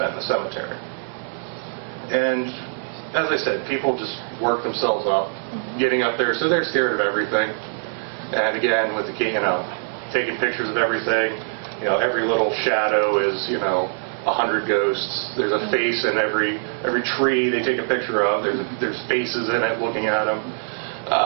in the cemetery. And as I said, people just work themselves up, getting up there, so they're scared of everything. And again, with the taking pictures of everything, every little shadow is, 100 ghosts. There's a face in every tree they take a picture of. There's faces in it looking at them.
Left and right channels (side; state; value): left; silent; digital silence